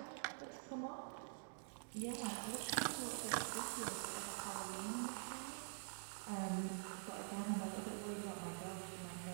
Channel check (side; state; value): left; silent; digital silence